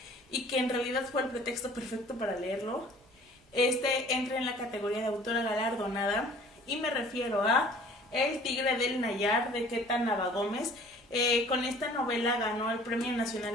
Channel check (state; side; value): normal; both; correlation 0.51